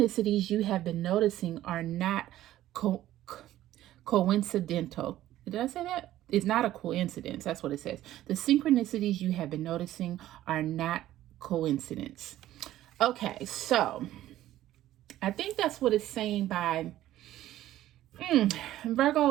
you have been noticing are not coincidental. Did I say that? It's not a coincidence. That's what it says. The synchronicities you have been noticing are not coincidence. Okay, so I think that's what it's saying by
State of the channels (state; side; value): quieter; left; 13.9 dB